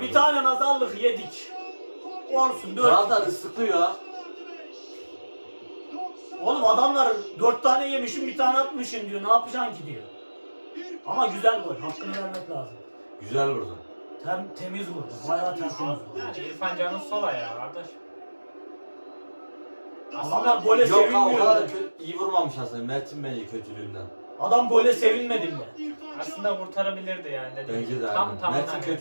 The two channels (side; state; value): both; inverted; correlation -1.00